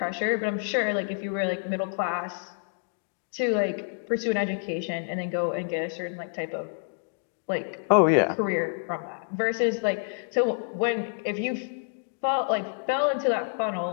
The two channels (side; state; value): right; silent; digital silence